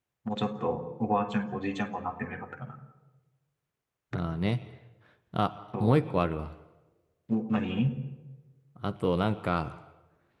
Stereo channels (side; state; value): both; identical; correlation 1.00